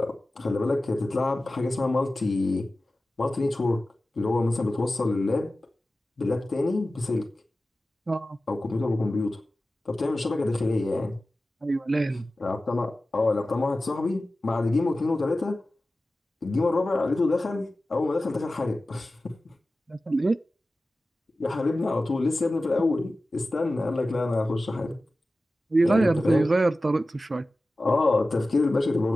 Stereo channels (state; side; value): normal; both; correlation 0.95